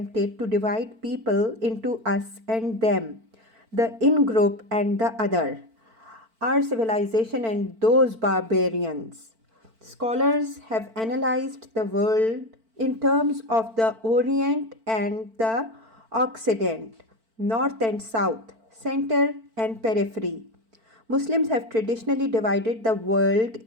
to divide people into us and them, the in group and the other, our civilization and those barbarians. Scholars have analyzed the world in terms of the Orient and the Occident, North and South, center and periphery. Muslims have traditionally divided the world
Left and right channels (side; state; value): left; late; 4.5 ms